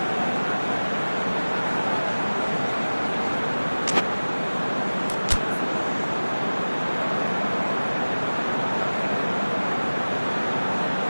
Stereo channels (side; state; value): both; inverted; correlation -1.00